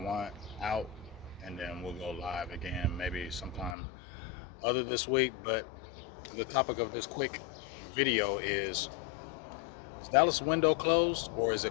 out, and then we'll go live again maybe sometime other this week. But the topic of this quick video is Dallas window closed or is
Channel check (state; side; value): drops out; right; at 3.8 s